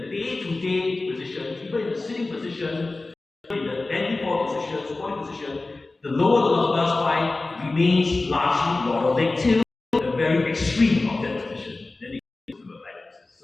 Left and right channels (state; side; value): quieter; right; 3.3 dB